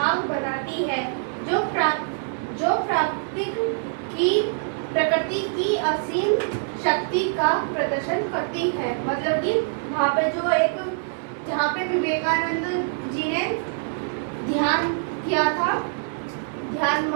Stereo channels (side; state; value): left; silent; 56 dB below the other